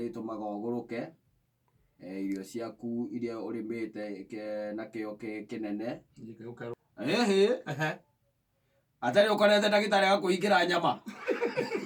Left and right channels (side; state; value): both; identical; correlation 1.00